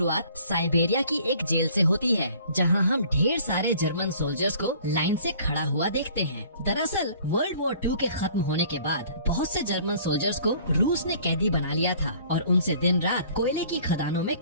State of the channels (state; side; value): inverted; both; correlation -0.53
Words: साइबेरिया की एक जेल से होती है, जहां हम ढेर सारे जर्मन सोल्जर्स को लाइन से खड़ा हुआ देखते हैं। दरअसल वर्ल्ड वॉर 2 के खत्म होने के बाद बहुत से जर्मन सोल्जर्स को रूस ने कैदी बना लिया था और उनसे दिन रात कोयले की खदानों में